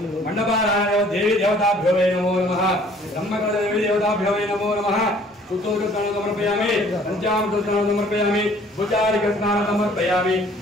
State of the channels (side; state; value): both; normal; correlation 0.56